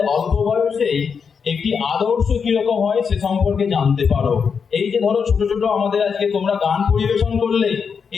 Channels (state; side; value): quieter; right; 6.1 dB